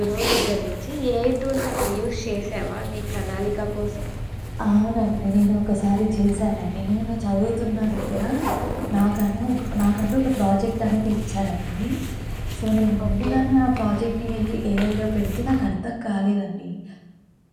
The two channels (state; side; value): identical; both; correlation 1.00